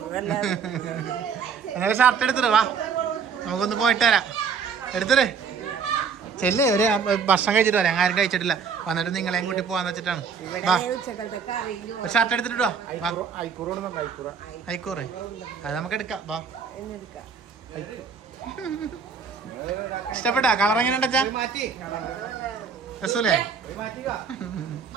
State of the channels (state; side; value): quieter; left; 6.1 dB